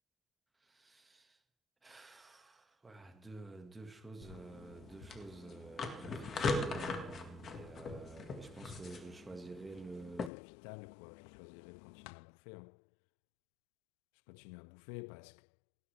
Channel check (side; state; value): right; drops out; at 10.3 s